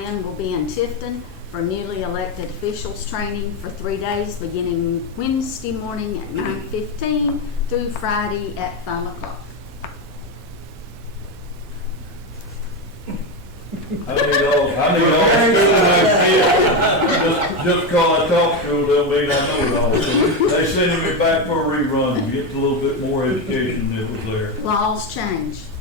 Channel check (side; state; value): both; normal; correlation 0.12